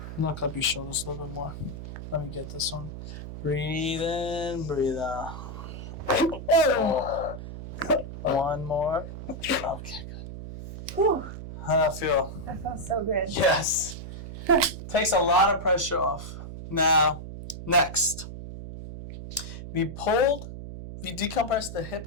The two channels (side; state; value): right; noise; hum, 10 dB below the sound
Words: Knock up your shoulders a little bit more. Let me get this one. Breathe in. Breathe out. One more. Okay, good. Whew. How'd that feel? That felt so good. Yes. Takes a lot of pressure off. Now, next. We decompressed the hip